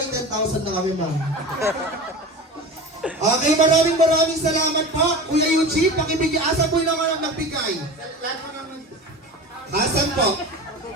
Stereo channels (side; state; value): both; normal; correlation 0.32